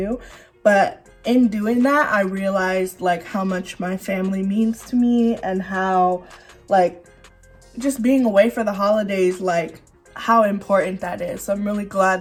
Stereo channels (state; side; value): identical; both; correlation 1.00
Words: But in doing that, I realized like how much my family means to me and how like just being away for the holidays, like how important that is. So I'm really